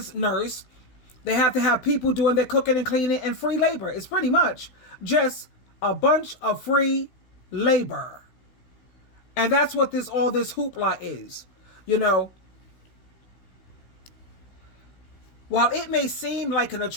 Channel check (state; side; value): late; right; 16 ms